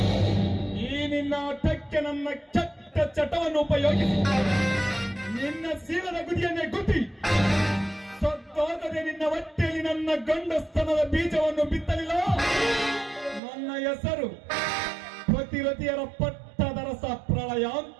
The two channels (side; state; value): left; drops out; at 13.4 s